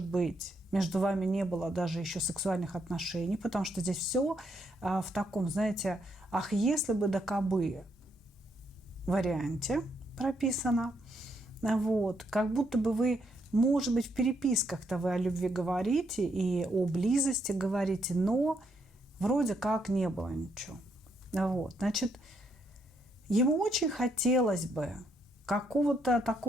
быть, между вами не было даже еще сексуальных отношений, потому что здесь все в таком, знаете, ах, если бы да кабы варианте прописано. Вот. Как будто бы вы, может быть, в переписках-то вы о любви говорите и о близости говорите, но вроде как не было ничего. Вот. Значит, ему очень хотелось бы какого-то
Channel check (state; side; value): normal; both; correlation 0.75